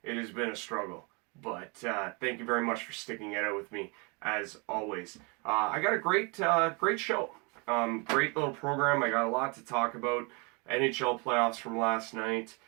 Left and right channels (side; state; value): left; quieter; 31.5 dB